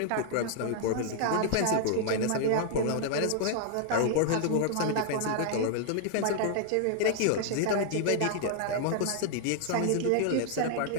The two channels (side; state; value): both; different; correlation 0.00